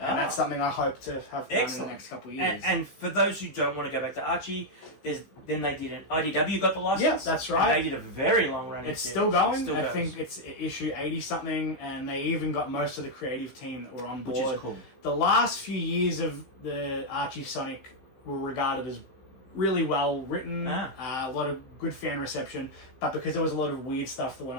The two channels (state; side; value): late; right; 15 ms